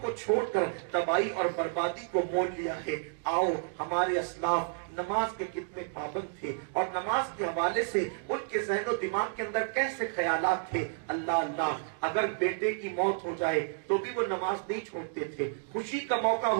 کو چھوڑ کر تباہی اور بربادی کو مول لیا ہے۔ آؤ، ہمارے اسلاف نماز کے کتنے پابند تھے اور نماز کے حوالے سے ان کے ذہن و دماغ کے اندر کیسے خیالات تھے۔ اللہ اللہ، اگر بیٹے کی موت ہو جائے تو بھی وہ نماز نہیں چھوڑتے تھے، خوشی کا موقع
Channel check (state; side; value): silent; left; digital silence